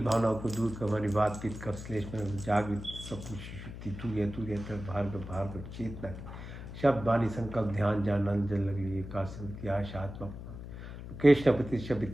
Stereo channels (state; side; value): noise; left; hum, 10 dB below the sound